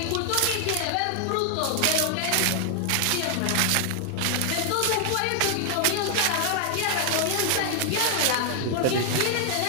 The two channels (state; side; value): different; both; correlation 0.00